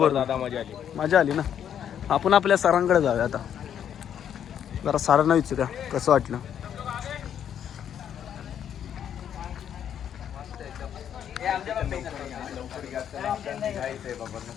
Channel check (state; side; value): quieter; right; 9.2 dB